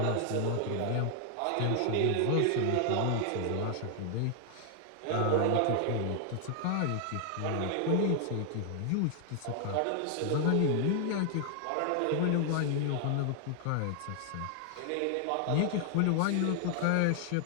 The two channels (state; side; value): different; both; correlation 0.00